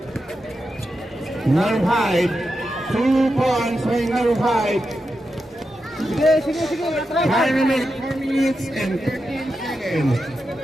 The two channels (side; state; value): both; normal; correlation 0.88